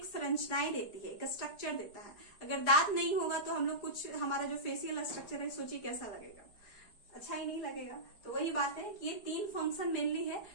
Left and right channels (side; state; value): right; late; 4.9 ms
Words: संरचनाएं देती है, एक स्ट्रक्चर देता है। अगर दांत नहीं होगा तो हम लोग कुछ, हमारा जो फेशियल स्ट्रक्चर है, सोचिए कैसा लगेगा? अच्छा ही नहीं लगेगा। तो वही बात है कि ये तीन फंक्शन मेनली है